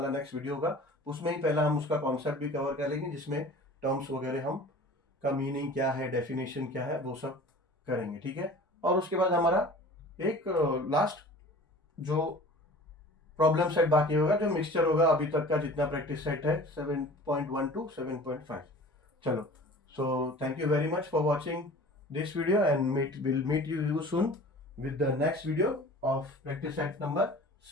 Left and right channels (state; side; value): normal; both; correlation 0.43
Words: नेक्स्ट वीडियो होगा उसमें ही पहला हम उसका कॉन्सेप्ट भी कवर कर लेंगे, जिसमें टर्म्स वगैरह हम का मीनिंग क्या है, डेफिनेशन क्या है, वो सब करेंगे, ठीक है। और उसके बाद हमारा एक लास्ट जो प्रॉब्लम सेट बाकी होगा, जो मिक्सचर होगा अभी तक का जितना प्रैक्टिस सेट है 7.1 to 7.5। चलो, so thank you very much for watching this video and we'll meet you soon with the next video of practice set number